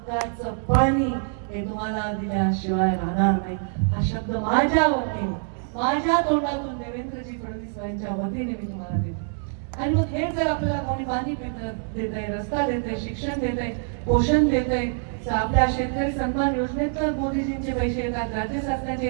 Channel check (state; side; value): silent; left; 57 dB below the other